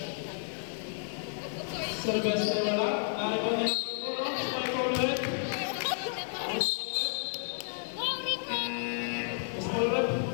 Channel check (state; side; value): silent; right; 57 dB below the other